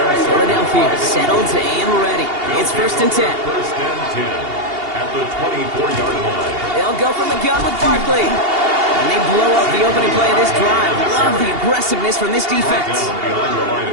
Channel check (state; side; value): late; left; 2.8 ms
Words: Philadelphia settled and ready. It's 1st and 10. 1st and 10 at the 24-yard line. They'll go from the gun with Barkley. And they blow up the opening play of this drive. Love the aggressiveness from this defense.